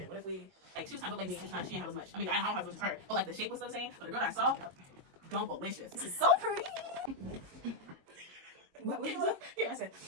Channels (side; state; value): left; late; 22 ms